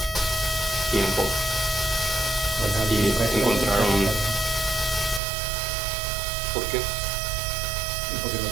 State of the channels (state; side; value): drops out; left; at 5.2 s